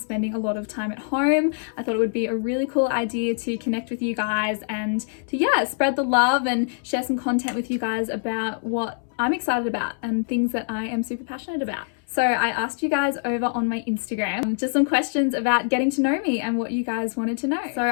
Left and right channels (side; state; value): right; silent; 62 dB below the other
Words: a lot of time at home. I thought it would be a really cool idea to connect with you guys and to, yeah, spread the love and share some content with you guys about what I'm excited about and things that I am super passionate about. So I asked you guys over on my Instagram just some questions about getting to know me and what you guys wanted to know. So